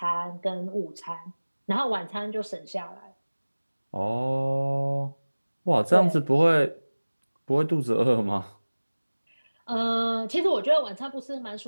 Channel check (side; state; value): both; inverted; correlation -1.00